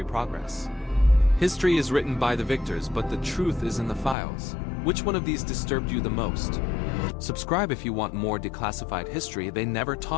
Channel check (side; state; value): right; drops out; at 4.2 s